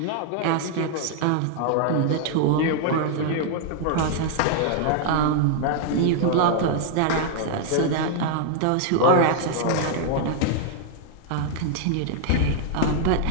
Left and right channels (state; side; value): different; both; correlation 0.00